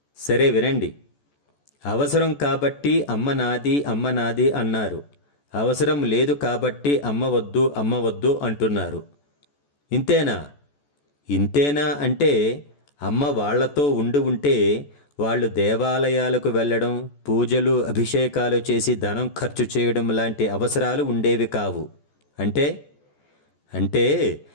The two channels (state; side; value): late; right; 14 ms